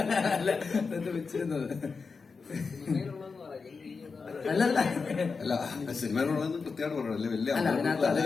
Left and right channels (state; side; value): quieter; right; 4.8 dB